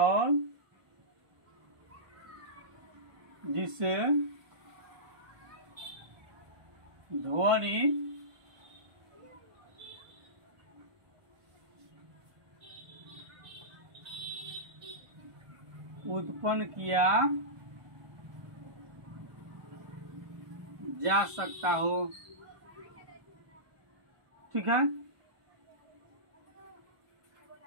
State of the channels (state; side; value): late; left; 1.4 ms